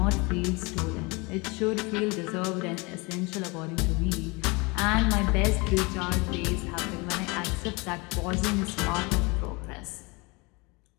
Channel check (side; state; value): right; quieter; 27.1 dB